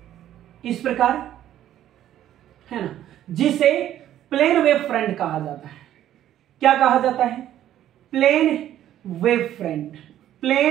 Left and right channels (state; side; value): quieter; left; 12.0 dB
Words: इस प्रकार, है ना, जिसे प्लेन वेव फ्रंट कहा जाता है। क्या कहा जाता है? Plane wave front,